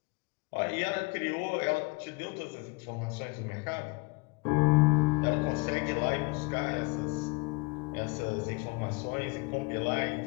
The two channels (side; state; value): right; quieter; 29.0 dB